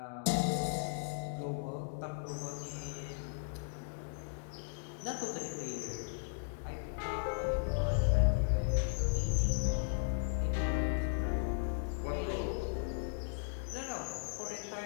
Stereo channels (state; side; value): silent; right; digital silence